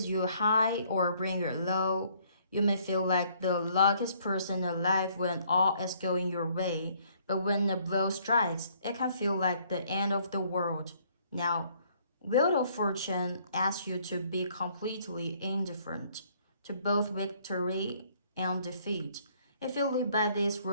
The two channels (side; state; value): both; inverted; correlation -0.64